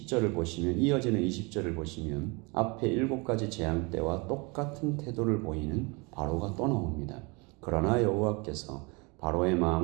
보시면, 이어지는 20절을 보시면 앞에 7가지 재앙 때와 똑같은 태도를 보이는 바로가 또 나옵니다. 그러나 여호와께서 바로의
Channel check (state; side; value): quieter; left; 28.8 dB